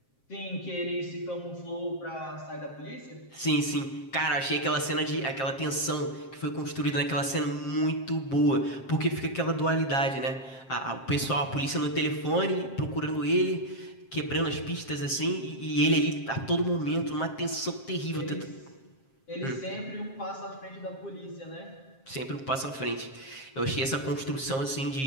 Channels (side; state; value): right; late; 7.5 ms